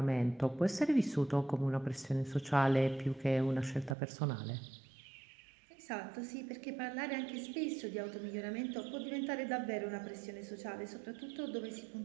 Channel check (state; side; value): drops out; left; at 4.0 s